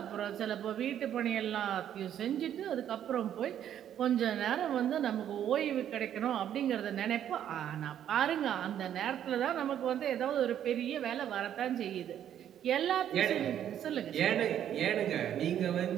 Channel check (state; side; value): quieter; left; 10.2 dB